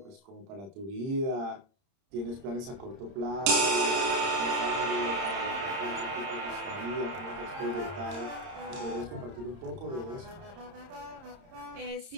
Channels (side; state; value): left; late; 30 ms